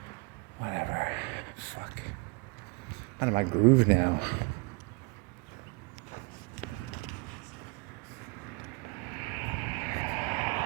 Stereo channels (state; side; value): quieter; left; 28.8 dB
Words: Whatever. Fuck. I'm out of my groove now.